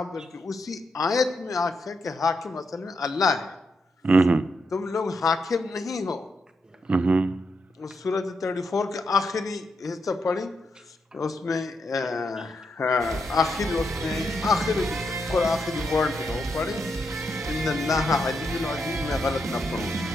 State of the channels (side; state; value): both; normal; correlation 0.82